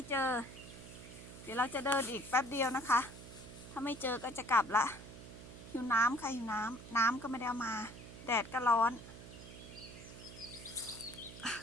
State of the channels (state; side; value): noise; right; hum, 14 dB below the sound